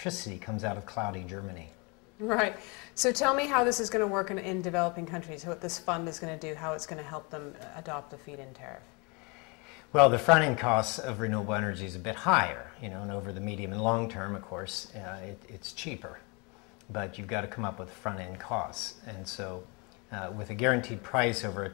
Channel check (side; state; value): right; quieter; 30.0 dB